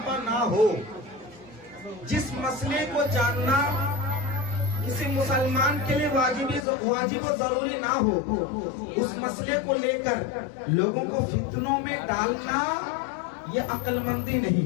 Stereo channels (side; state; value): right; drops out; at 6.7 s